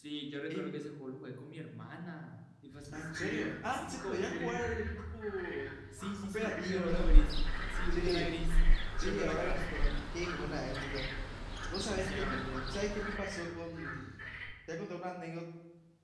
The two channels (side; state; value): both; identical; correlation 1.00